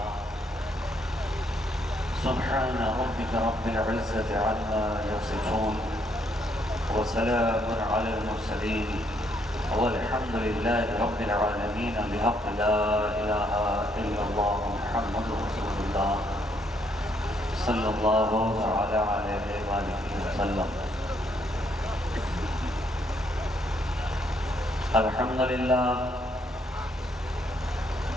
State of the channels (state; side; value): normal; both; correlation 0.71